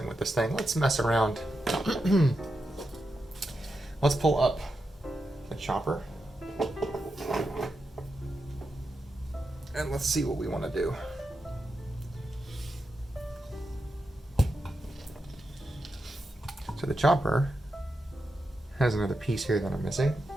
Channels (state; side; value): normal; both; correlation 0.87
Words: with this thing. Let's mess around. Let's pull up the chopper. And let's see what we want to do. So the chopper has another piece here that I'm missing.